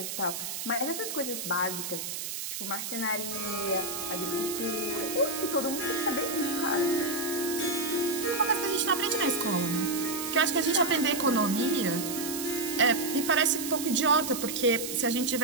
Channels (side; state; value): right; noise; hiss, 5 dB below the sound